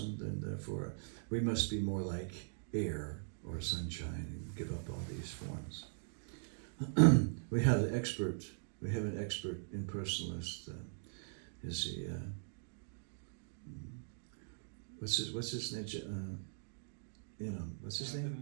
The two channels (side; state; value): left; silent; digital silence